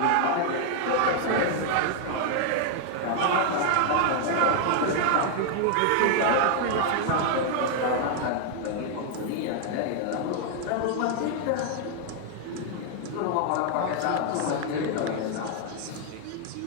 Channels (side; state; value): both; different; correlation 0.00